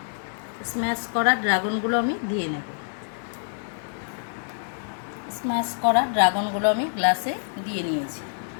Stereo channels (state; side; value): silent; right; 61 dB below the other